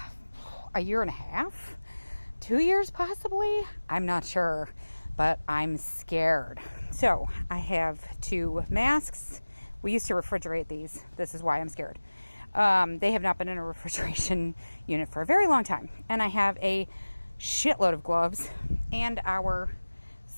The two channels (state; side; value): inverted; both; correlation -1.00